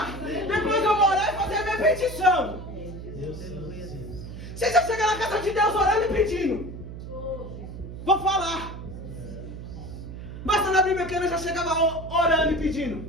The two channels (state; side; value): noise; right; hum, 10 dB below the sound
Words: Depois eu vou orar e fazer a minha petição. Você já chega na casa de Deus orando e pedindo. Vou falar. Basta na Bíblia que eu já chegava orando e